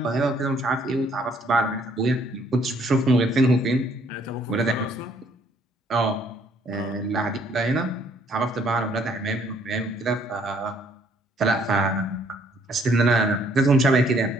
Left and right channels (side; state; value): both; normal; correlation 0.64